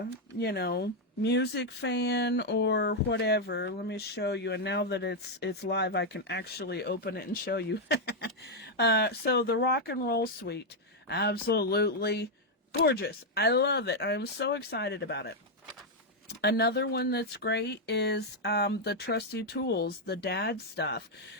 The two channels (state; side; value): normal; both; correlation 0.00